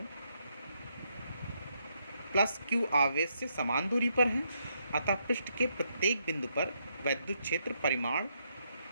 +Q आवेश से समान दूरी पर हैं, अतः पृष्ठ के प्रत्येक बिंदु पर वैद्युत क्षेत्र परिमाण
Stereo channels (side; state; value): both; inverted; correlation -0.77